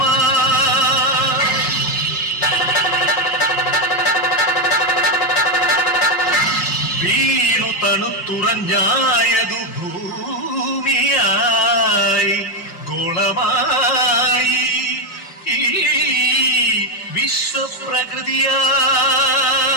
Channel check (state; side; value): late; right; 5.5 ms